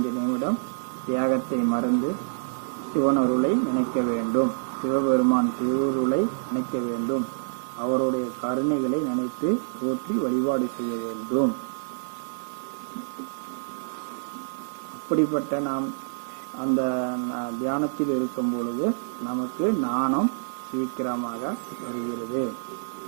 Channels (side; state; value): left; silent; 58 dB below the other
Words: நிமிடம் தியாகத்தை மறந்து சிவனருளை நினைக்க வேண்டும், சிவபெருமான் திருவுருளை நினைக்க வேண்டும். அவருடைய கருணைகளை நினைத்து போற்றி வழிபாடு செய்ய வேண்டும். அப்படிப்பட்ட நாம் அந்த தியானத்தில் இருக்கும் பொழுது நமக்கு ஞானம் சீக்கிரமாக வருகிறது.